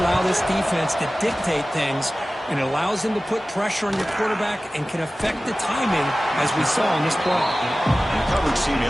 allow this defense to dictate things, and it allows them to put pressure on your quarterback and can affect the timing, as we saw in this play. And the coverage team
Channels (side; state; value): both; normal; correlation 0.96